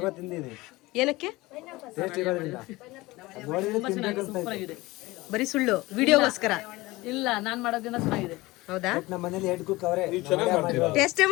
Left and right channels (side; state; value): right; quieter; 20.5 dB